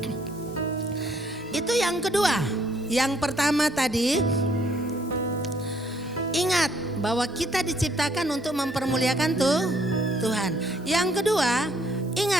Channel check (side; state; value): both; normal; correlation 0.66